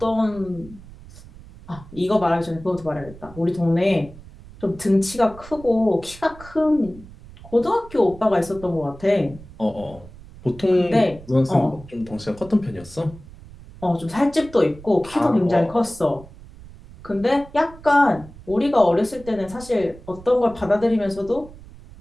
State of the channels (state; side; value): noise; right; rumble, 19 dB below the sound